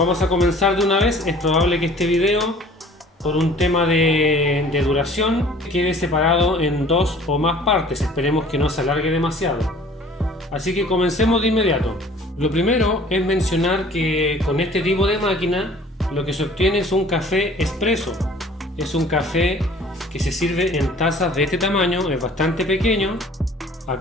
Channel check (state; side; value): normal; both; correlation 0.50